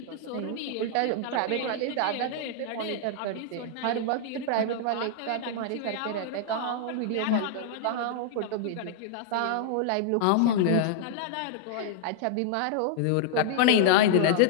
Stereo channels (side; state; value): both; different; correlation -0.01